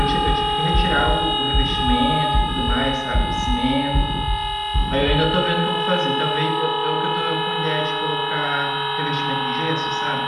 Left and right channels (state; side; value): identical; both; correlation 1.00